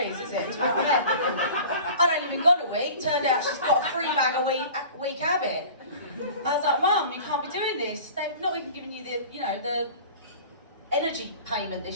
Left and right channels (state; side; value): inverted; both; correlation -0.41